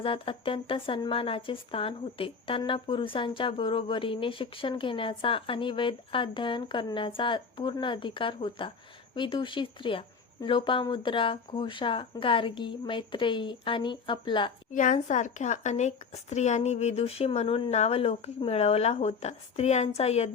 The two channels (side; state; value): right; quieter; 5.4 dB